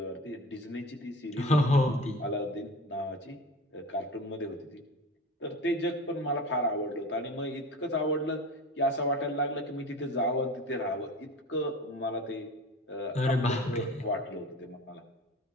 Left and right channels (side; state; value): both; normal; correlation 0.34